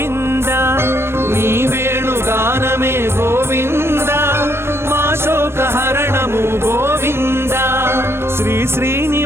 నీ వేణుగానమే గోవింద మా శోకహరణము గోవింద శ్రీ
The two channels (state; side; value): late; left; 0.12 ms